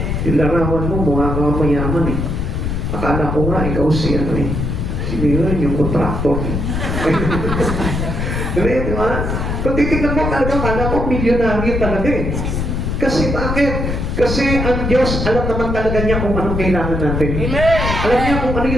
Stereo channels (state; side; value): noise; left; rumble, 2 dB below the sound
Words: Yung larawan mo, mukha kang mayaman eh. Akala ko nga, ikaw si ano eh. Si Miran, yung kontraktor. Di ba? Kung titignan mo talaga, akala ko milyonaryo talaga eh. Kasi bakit? Kasi ang Diyos, alam naman talaga niya kung anong kailangan natin. Amen. Alam niya kung ano